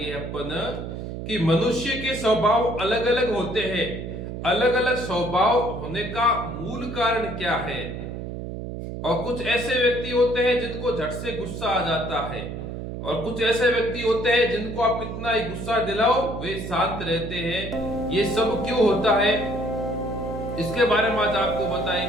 अपन कि मनुष्य के स्वभाव अलग अलग होते हैं। अलग अलग स्वभाव होने का मूल कारण क्या है? और कुछ ऐसे व्यक्ति होते हैं जिनको झट से गुस्सा आ जाता है, और कुछ ऐसे व्यक्ति होते हैं जिनको आप कितना ही गुस्सा दिलाओ वे शांत रहते हैं। ये सब क्यों होता है, इसके बारे में आज आपको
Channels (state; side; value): noise; right; hum, 7 dB below the sound